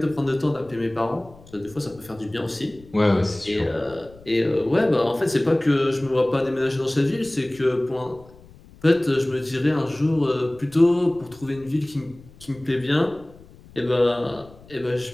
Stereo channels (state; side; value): noise; left; rumble, 23 dB below the sound